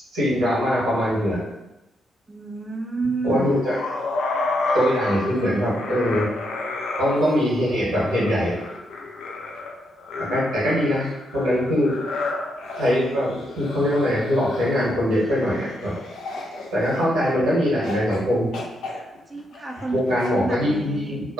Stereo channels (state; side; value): normal; both; correlation 0.79